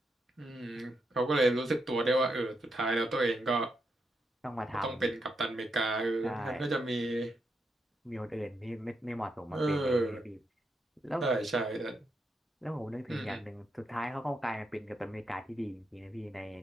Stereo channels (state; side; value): normal; both; correlation 0.82